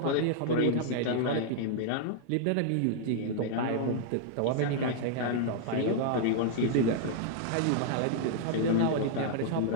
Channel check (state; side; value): different; both; correlation -0.01